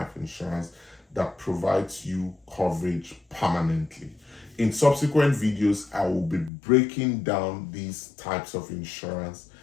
insurance that provides you coverage permanently. In subsequent videos, I will be breaking down these types of insurance,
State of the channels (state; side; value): drops out; right; at 6.5 s